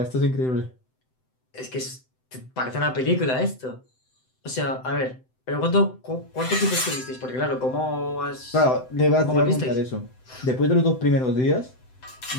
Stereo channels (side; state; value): right; late; 7.8 ms